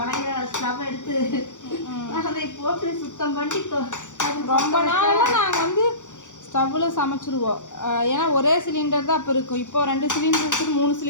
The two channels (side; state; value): right; late; 0.86 ms